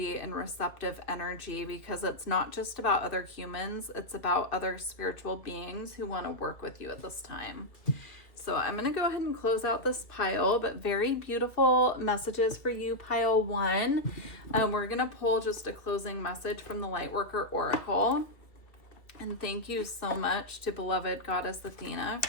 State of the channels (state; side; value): late; right; 2.2 ms